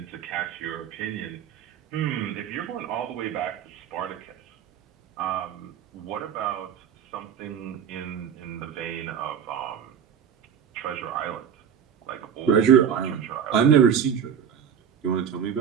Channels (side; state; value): left; quieter; 8.2 dB